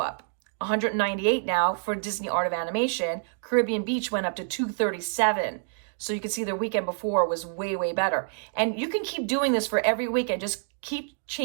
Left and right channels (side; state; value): left; silent; digital silence